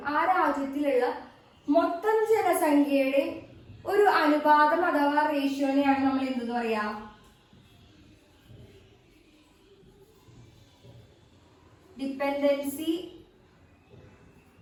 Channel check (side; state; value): both; identical; correlation 1.00